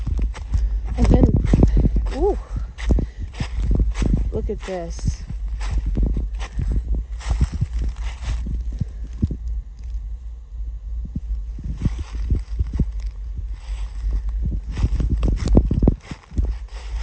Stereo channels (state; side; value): identical; both; correlation 1.00